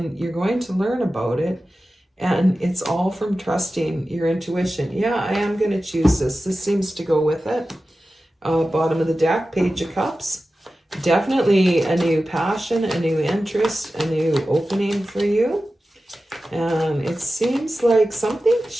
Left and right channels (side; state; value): both; normal; correlation 0.94